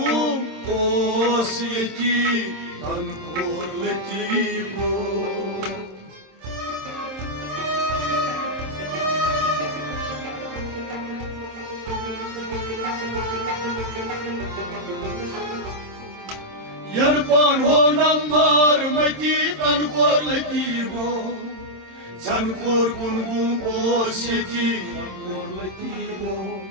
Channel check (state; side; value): late; left; 27 ms